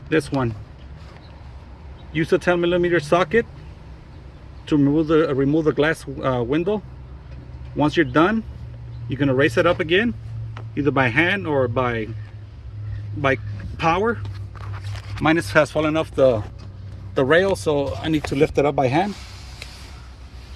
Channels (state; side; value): identical; both; correlation 1.00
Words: This one. Use a 10mm socket to remove the glass window. Once you're done, you're going to raise it up again, either by hand or by power. Mine has fallen off the rail, so I need to lift it up by hand.